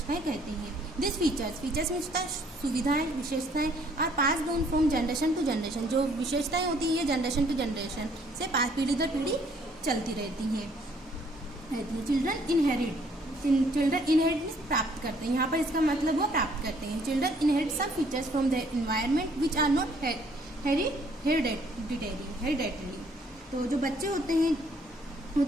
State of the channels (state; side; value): normal; both; correlation 0.63